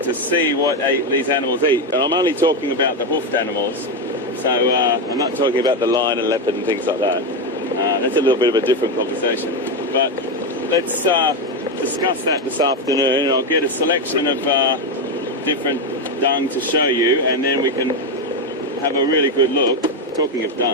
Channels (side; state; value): both; normal; correlation 0.10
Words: see what these animals eat, and I'm only talking about the hoofed animals. So I'm not talking about the lion and leopard and things like that. That's a little bit of a different conversation. But let's discuss that this afternoon, and I'll get a selection of different dung to show you, and then we can have a really good look. Talking of